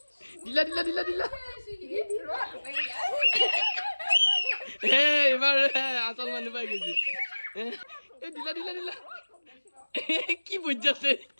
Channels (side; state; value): both; inverted; correlation -1.00